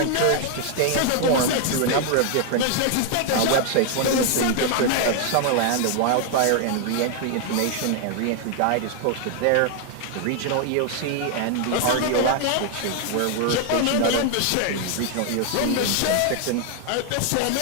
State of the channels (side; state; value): both; different; correlation 0.00